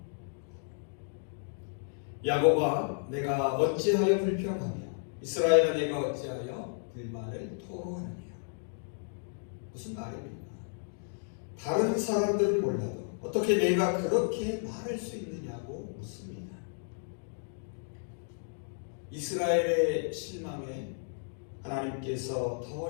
야곱아, 내가 어찌하여 불평하며 이스라엘아, 내가 어찌하여 불만을 토로하느냐. 무슨 말입니까? 다른 사람들은 몰라도 어떻게 내가 그렇게 말할 수 있느냐고 묻습니다. 이스라엘의 실망에 하나님께서 더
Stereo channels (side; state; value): right; silent; digital silence